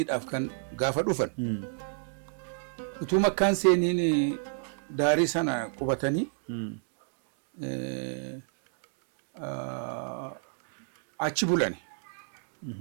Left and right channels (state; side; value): silent; left; digital silence